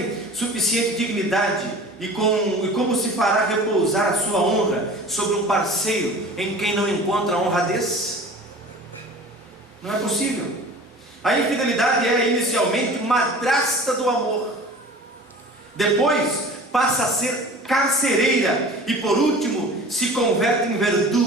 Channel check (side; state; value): both; normal; correlation 0.41